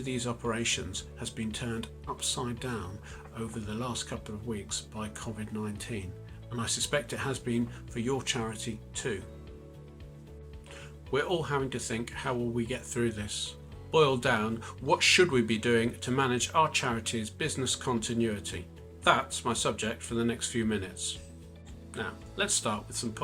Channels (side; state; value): both; identical; correlation 1.00